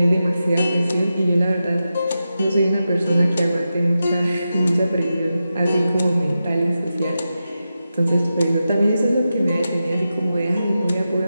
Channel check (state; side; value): inverted; both; correlation -0.91